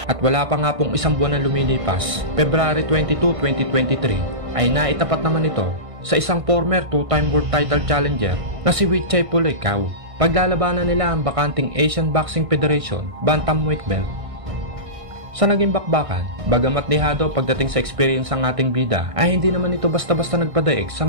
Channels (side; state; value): left; late; 1.6 ms